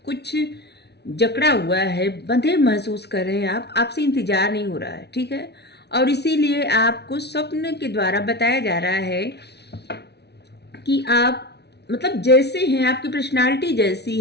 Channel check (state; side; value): late; right; 0.49 ms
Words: कुछ जकड़ा हुआ है, बंधे महसूस कर रहे हैं आप, आपसे इंतजार नहीं हो रहा है। ठीक है, और इसीलिए आपको स्वप्न के द्वारा बताया जा रहा है कि आप मतलब जैसे हैं, आपकी पर्सनालिटी जैसी